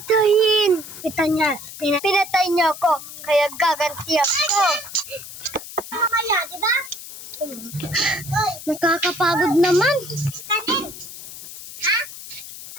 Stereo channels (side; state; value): left; noise; hiss, 13 dB below the sound